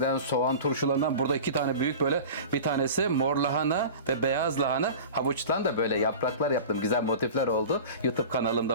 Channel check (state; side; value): inverted; both; correlation -0.36